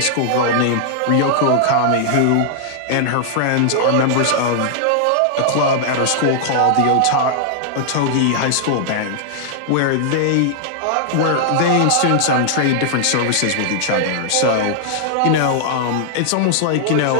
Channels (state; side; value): different; both; correlation -0.01